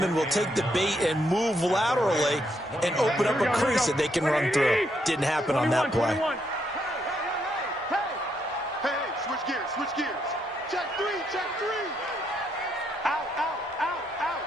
will take the bait and move laterally and open up a crease that they can run through. Didn't happen on that play. Hey, switch gears. Check three. Out.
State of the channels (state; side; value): normal; both; correlation 0.76